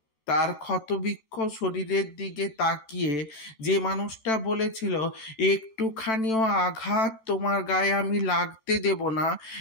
তার ক্ষতবিক্ষত শরীরের দিকে তাকিয়ে যে মানুষটা বলেছিল, একটুখানিও আঘাত তোমার গায়ে আমি লাগতে দেব না,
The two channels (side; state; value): right; late; 14 ms